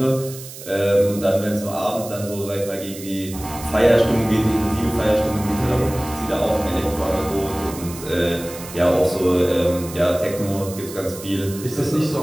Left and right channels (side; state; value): right; noise; hiss, 14 dB below the sound